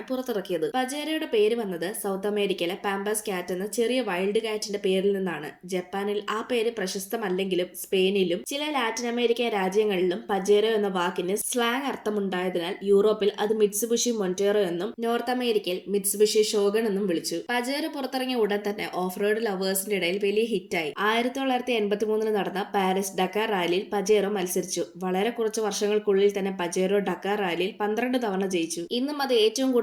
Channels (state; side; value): identical; both; correlation 1.00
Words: പുറത്തിറക്കിയത്. പജേറോയുടെ പേര് വന്നത് സൗത്ത് അമേരിക്കയിലെ പാമ്പാസ് കാറ്റ് എന്ന ചെറിയ വൈൽഡ് കാറ്റിന്റെ പേരിൽ നിന്നാണ്. ജപ്പാനിൽ ആ പേര് പ്രശസ്തമല്ലെങ്കിലും സ്പെയിനിലും ചില ലാറ്റിൻ അമേരിക്കൻ രാജ്യങ്ങളിലും പജേറോ എന്ന വാക്കിന് സ്ലാങ് അർത്ഥമുണ്ടായതിനാൽ യൂറോപ്പിൽ അത് മിത്സുബിഷി മൊന്റേറോ എന്നും നോർത്ത് അമേരിക്കയിൽ മിത്സുബിഷി ഷോഗൺ എന്നും വിളിച്ചു. പജേറോ പുറത്തിറങ്ങിയ ഉടൻ തന്നെ ഓഫ് റോഡ് ലവേഴ്സിന്റെ ഇടയിൽ വലിയ ഹിറ്റായി. 1983 നടന്ന പാരീസ് ഡക്കാർ റാലിയിൽ പജേറോ മത്സരിച്ചു. വളരെ കുറച്ച് വർഷങ്ങൾക്കുള്ളിൽ തന്നെ പജേറോ ഡക്കാർ റാലിയിൽ 12 തവണ ജയിച്ചു. ഇന്നും അത് ഏറ്റവും